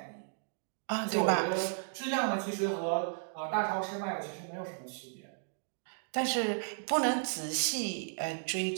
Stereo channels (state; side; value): silent; left; digital silence